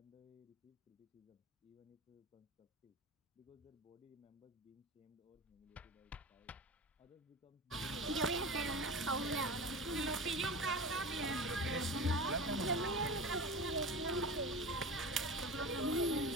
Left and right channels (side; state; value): both; normal; correlation 0.31